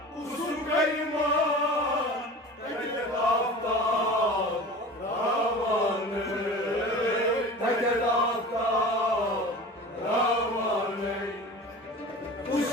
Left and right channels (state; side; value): normal; both; correlation 0.37